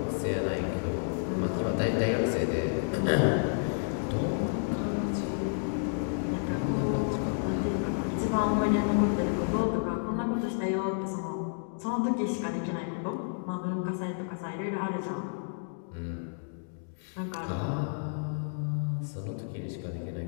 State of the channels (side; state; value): right; silent; digital silence